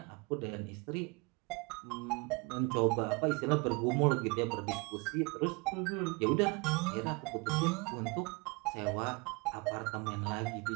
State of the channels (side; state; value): left; quieter; 28.4 dB